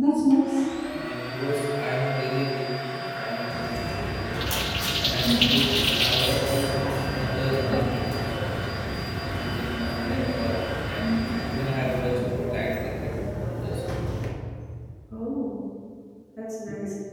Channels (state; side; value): identical; both; correlation 1.00